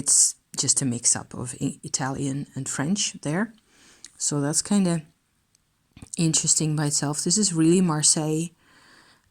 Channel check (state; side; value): identical; both; correlation 1.00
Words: just a mix-up of Italian and French there. So that's kind of interesting by itself. This is really Marseille,